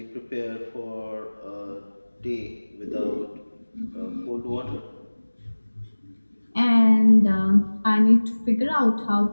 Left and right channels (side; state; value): both; inverted; correlation -1.00